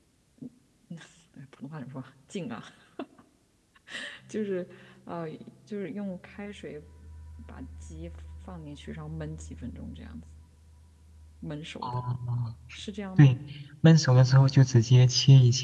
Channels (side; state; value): both; identical; correlation 1.00